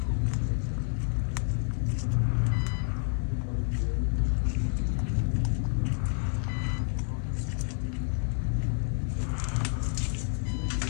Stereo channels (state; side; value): silent; right; digital silence